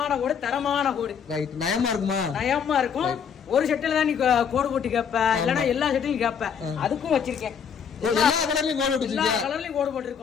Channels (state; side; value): quieter; right; 7.2 dB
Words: கோடு, தரமான கோடு. ரைட். நயமா இருக்குமா? நயமா இருக்கும். ஒரு சட்டையில தான் நீ கோடு போட்டு கேப்ப, இல்லன்னா எல்லா சட்டையும் கேப்ப. அதுக்கும் வச்சிருக்கேன். எல்லா கலர்லயும் கோடு போட்டுருக்கீங்க. எல்லா கலர்லயும் கோடு